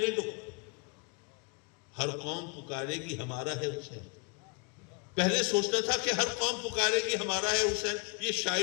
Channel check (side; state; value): right; quieter; 33.0 dB